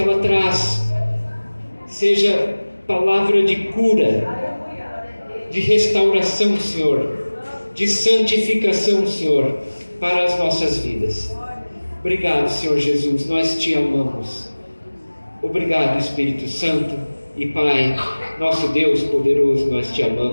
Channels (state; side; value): inverted; both; correlation -1.00